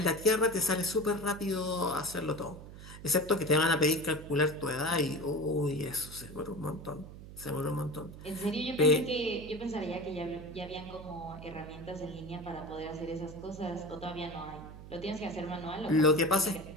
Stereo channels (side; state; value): right; noise; hum, 14 dB below the sound